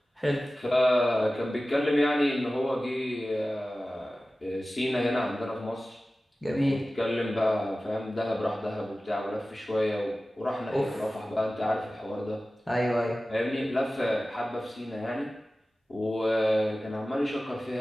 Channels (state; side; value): normal; both; correlation 0.96